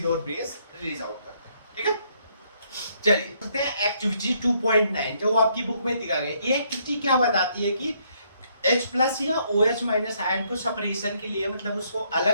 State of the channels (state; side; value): inverted; both; correlation -0.70